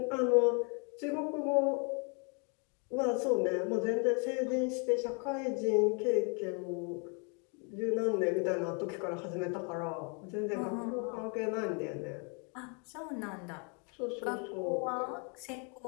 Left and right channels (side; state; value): right; quieter; 36.6 dB